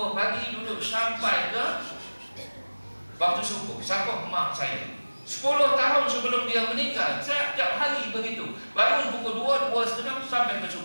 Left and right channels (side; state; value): both; inverted; correlation -1.00